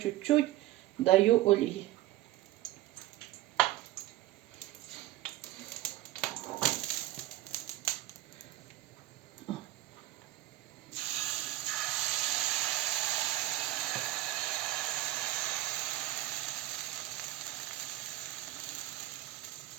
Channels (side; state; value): left; quieter; 15.8 dB